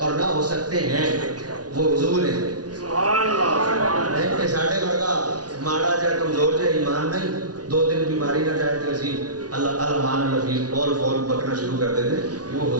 نہ ہو سکتے ہیں، وہ حضور ہیں۔ نہیں کہ ساڑھے ورگا ماڑا جائے کمزور جائے ایمان نہیں، دو دن بیماری نہ جائے تو اسی اللہ مان لفیظ فول فول بکنا شروع کر دیتے، وہ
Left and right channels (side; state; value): left; late; 0.69 ms